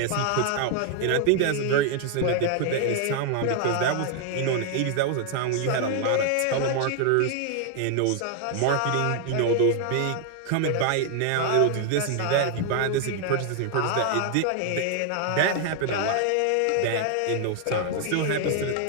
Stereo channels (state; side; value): different; both; correlation 0.00